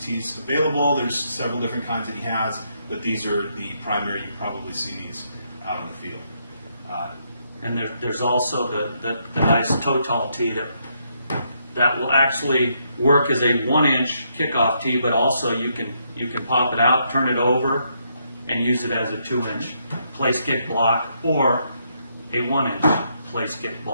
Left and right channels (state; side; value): inverted; both; correlation -0.76